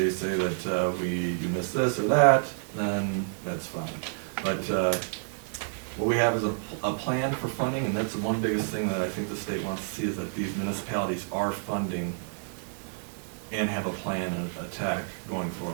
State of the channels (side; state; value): left; silent; digital silence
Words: say that you missed this or that, then that's fine. But what we have is a plan for funding, and that's the one biggest thing that I think the state wants to see, is that these municipalities are funding and have a plan and attack going